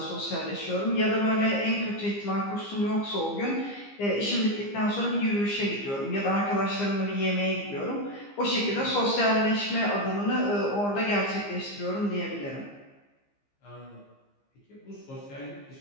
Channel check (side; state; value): right; late; 15 ms